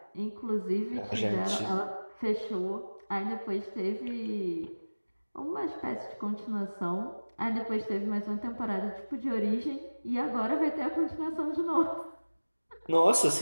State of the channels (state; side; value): inverted; both; correlation -1.00